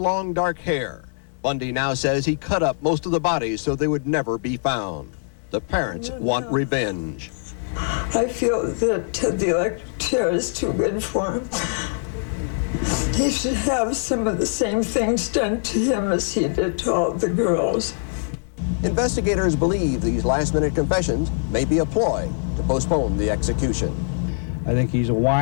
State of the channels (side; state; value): right; silent; digital silence